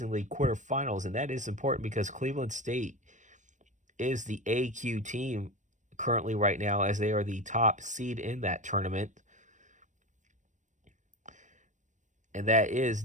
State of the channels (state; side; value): late; left; 0.35 ms